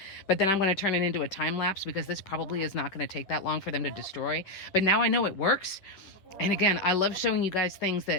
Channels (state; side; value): late; right; 10 ms